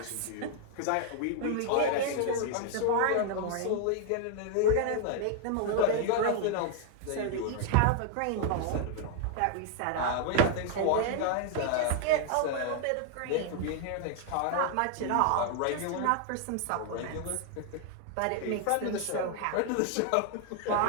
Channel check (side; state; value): both; different; correlation 0.00